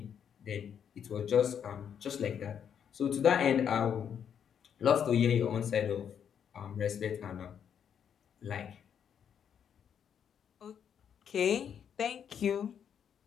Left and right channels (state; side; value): quieter; right; 8.2 dB